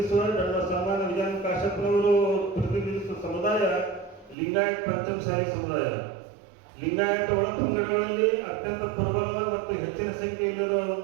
ನನ್ನ ಸನ್ಮಾನ ವಿಧಾನ ಕಾಶ್ಯಪ್ನವರು ಪ್ರತಿನಿಧಿಸುವ ಸಮುದಾಯ ಲಿಂಗಾಯತ್ ಪಂಚಮಸಾಲಿ ಸಮುದಾಯ. ಲಿಂಗಾಯತ ಒಳಪಂಗಡಗಳಲ್ಲಿ ಅತ್ಯಂತ ಪ್ರಬಲ ಮತ್ತು ಹೆಚ್ಚಿನ ಸಂಖ್ಯೆಯಲ್ಲಿರುವ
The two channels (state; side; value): drops out; left; at 4.4 s